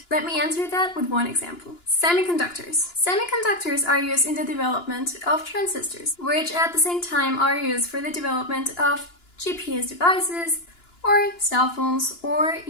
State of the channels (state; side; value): late; right; 2.9 ms